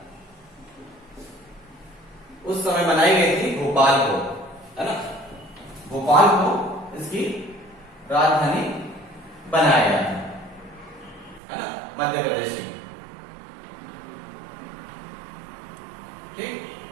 उस समय बनाई गई थी भोपाल को, है ना, भोपाल को इसकी राजधानी बनाया गया है ना, मध्य प्रदेश की। ठीक,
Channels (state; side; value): drops out; left; at 11.4 s